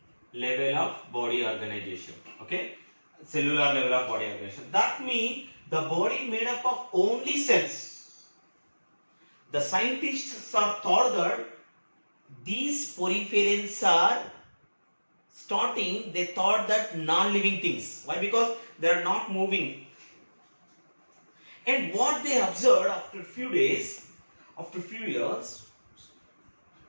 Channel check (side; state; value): both; inverted; correlation -1.00